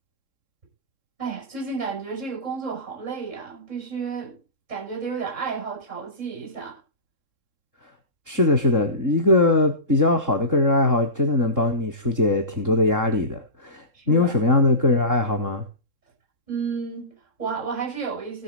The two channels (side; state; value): left; late; 3.7 ms